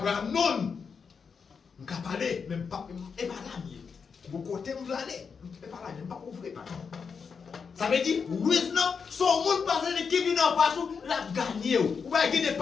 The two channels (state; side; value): quieter; right; 5.8 dB